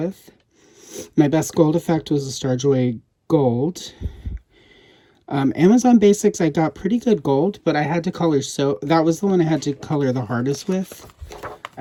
My best gold effect was the Starjoy Gold. Amazon Basics, I got pretty good gold, but I had to color, so that was the one I had to color the hardest with,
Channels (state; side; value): identical; both; correlation 1.00